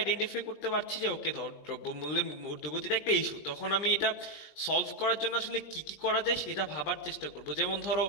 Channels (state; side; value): late; right; 20 ms